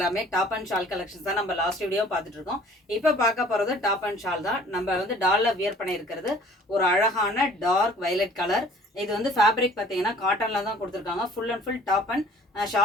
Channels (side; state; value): both; normal; correlation 0.52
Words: டாப் அண்ட் ஷால் கலெக்ஷன்ஸ் தான். நம்ம லாஸ்ட் வீடியோ பார்த்துட்டு இருக்கோம். இப்போ பார்க்க போறது டாப் அண்ட் ஷால் தான். நம்ம வந்து டால்ல வியர் பண்ணி இருக்கிறது ஒரு அழகான டார்க் வயலட் கலர். இது வந்து ஃபேப்ரிக் பார்த்தீங்கன்னா காட்டன்ல தான் கொடுத்துருக்காங்க. Full and full top and